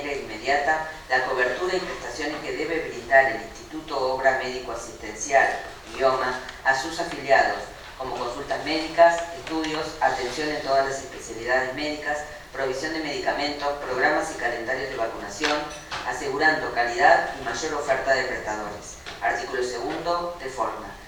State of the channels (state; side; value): identical; both; correlation 1.00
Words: inmediata la cobertura y prestaciones que debe brindar el Instituto Obra Médico Asistencial, IOMA, a sus afiliados, como consultas médicas, estudios, atención en todas las especialidades médicas, provisión de medicamentos, programas y calendarios de vacunación, asegurando calidad y mayor oferta de prestadores. Artículo segundo, de forma.